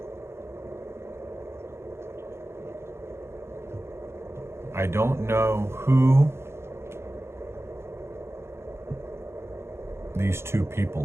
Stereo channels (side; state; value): left; late; 0.12 ms